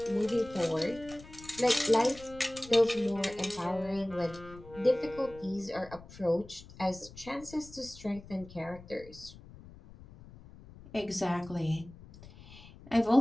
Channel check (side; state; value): left; noise; rumble, 19 dB below the sound